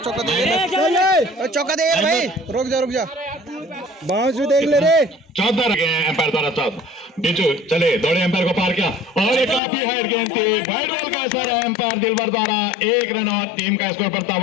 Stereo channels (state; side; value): drops out; right; at 9.6 s